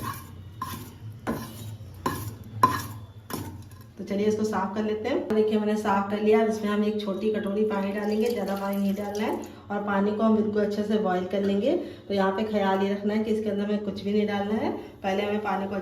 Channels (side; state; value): both; identical; correlation 1.00